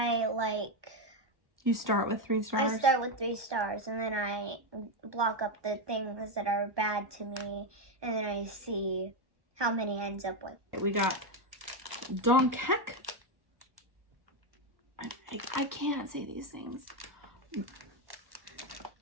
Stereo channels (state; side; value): late; left; 1.2 ms